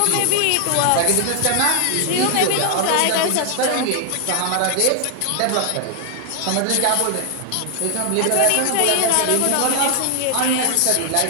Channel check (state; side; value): different; both; correlation 0.00